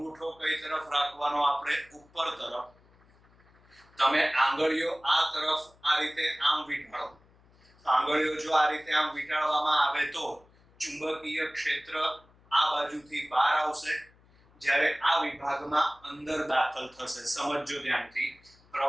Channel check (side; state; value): left; noise; hum, 30 dB below the sound